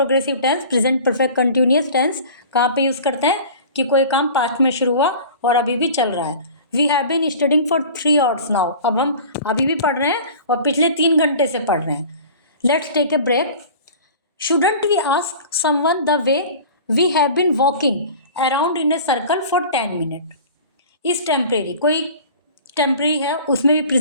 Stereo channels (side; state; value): both; inverted; correlation -0.41